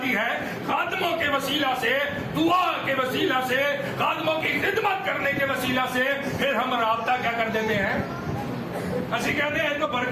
है खादमों के वसीला से, दुआ के वसीला से, खादमों की खिदमत करने के वसीला से, फिर हम राब्ता क्या कर देते हैं? असि कहते हैं तो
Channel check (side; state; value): both; identical; correlation 1.00